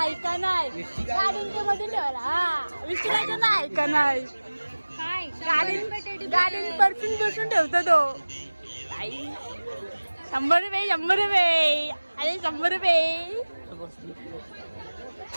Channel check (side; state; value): both; inverted; correlation -1.00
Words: ऐका नाही गाडींच्या मध्ये ठेवायला. हा विचारायचं ना ऐका नाही. गाडीन परफ्यूम बसून ठेवतो तो. 100 रुपये 100 रुपये. अरे 100 रुपये.